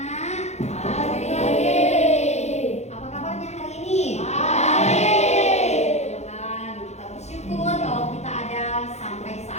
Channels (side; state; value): right; late; 0.32 ms